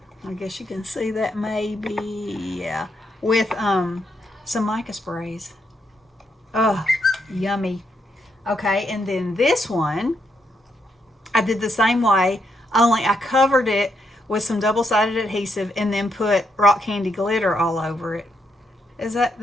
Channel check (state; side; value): normal; both; correlation 0.78